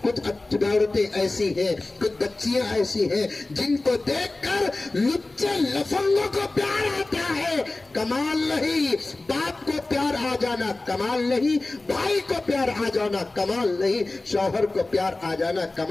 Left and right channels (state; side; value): quieter; right; 3.1 dB